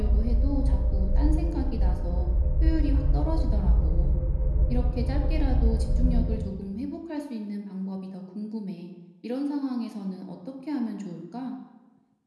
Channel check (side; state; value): both; identical; correlation 1.00